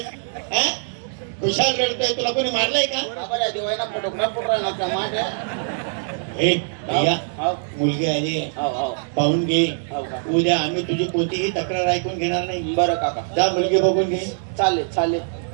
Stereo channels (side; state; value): left; silent; digital silence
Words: खुशाल रडतोय तुला कोणी मारलंय का बरं दिवायला फोटोग्राफ फोटो नका माझ्या हे भैया हो मुलगी आली हो हो पाहून घे हो का उद्या आम्ही तुझी कोणतीही तक्रार ऐकून घेणार नाही बरं काका जा मुलगी बघून घे चालेल चालेल